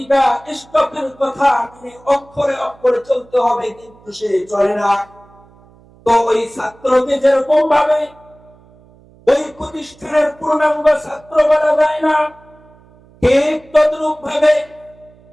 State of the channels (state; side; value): noise; right; hum, 27 dB below the sound